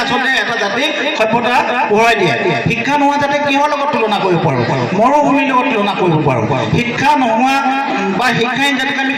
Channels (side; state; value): both; identical; correlation 1.00